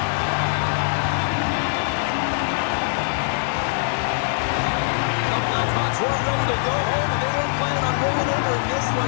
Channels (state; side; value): silent; right; 64 dB below the other